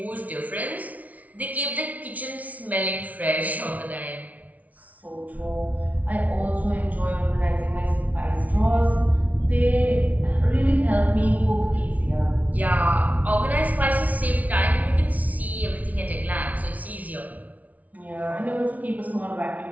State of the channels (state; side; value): late; left; 0.071 ms